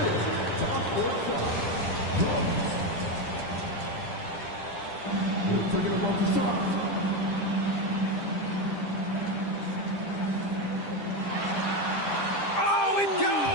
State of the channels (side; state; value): right; late; 10 ms